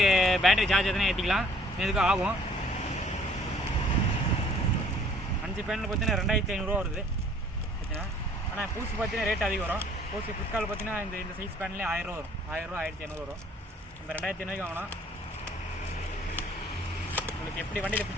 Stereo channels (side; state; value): both; normal; correlation 0.58